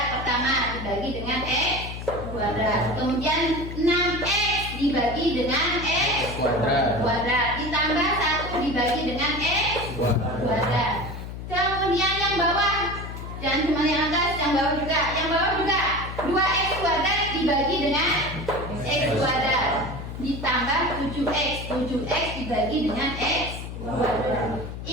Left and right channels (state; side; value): noise; left; hum, 9 dB below the sound